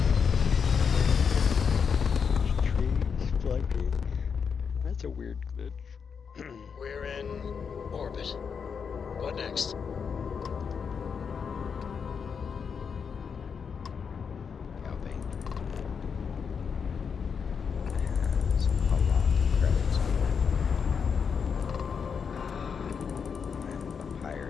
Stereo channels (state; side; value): quieter; right; 6.3 dB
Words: Trees flanking. That's a weird glitch. We're in orbit. What next? Galvane has a lot of credits on it. I'm a